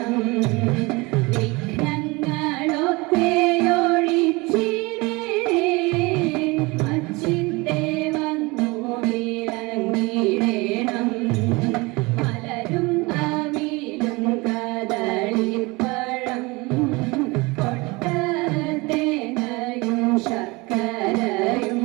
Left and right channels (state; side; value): quieter; left; 24.7 dB